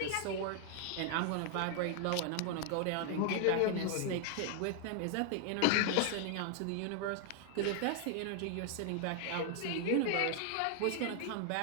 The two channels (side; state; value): both; different; correlation 0.00